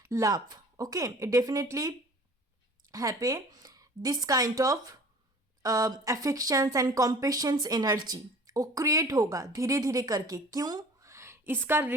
love. Okay, it definitely happy this kind of affections and compassions energy वो क्रिएट होगा धीरे धीरे करके। क्यों? इसका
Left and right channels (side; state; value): both; normal; correlation 0.46